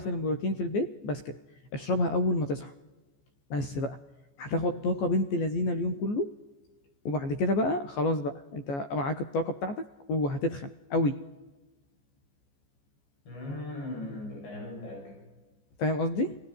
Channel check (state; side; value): late; right; 14 ms